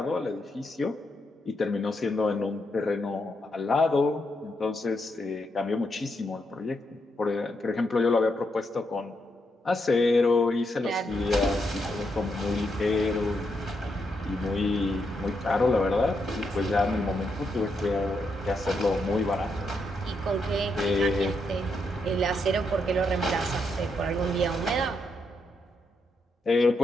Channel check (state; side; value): normal; both; correlation 0.80